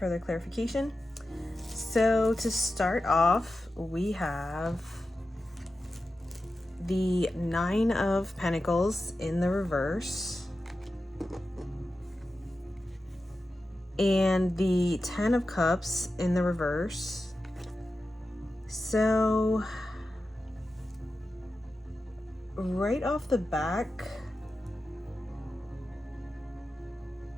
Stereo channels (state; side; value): normal; both; correlation 0.92